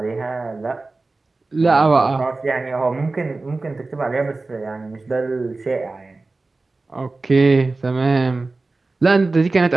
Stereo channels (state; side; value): quieter; left; 3.5 dB